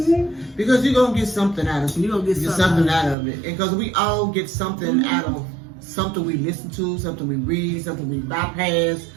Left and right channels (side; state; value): left; drops out; at 3.2 s